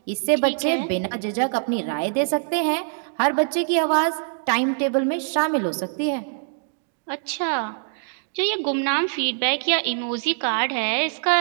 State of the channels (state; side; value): silent; left; digital silence